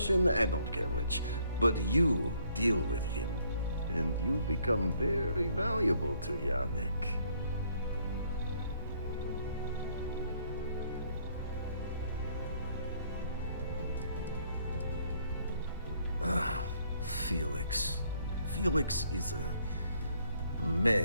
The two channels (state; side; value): inverted; both; correlation -0.67